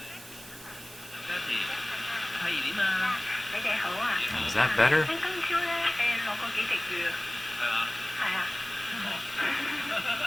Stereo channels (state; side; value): noise; right; hiss, 17 dB below the sound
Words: Is that better?